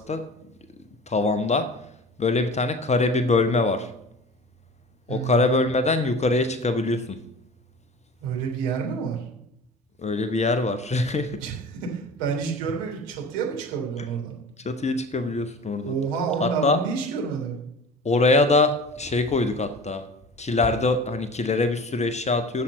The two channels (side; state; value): both; normal; correlation 0.39